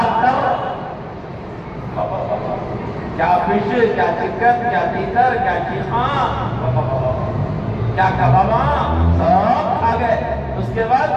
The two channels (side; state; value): both; identical; correlation 1.00